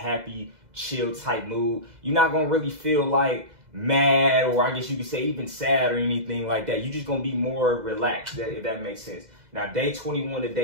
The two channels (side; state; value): left; late; 2.0 ms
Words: chill type mood. You're not going to really feel like mad, or I guess you could say even sad or anything like that. You're just going to be more relaxed, if that makes sense. Now, day 21 to